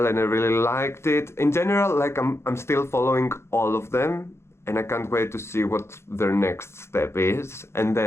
and I really liked it. In general, like I'm still following all of them and I can't wait to see what their next step is. And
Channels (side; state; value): right; late; 0.13 ms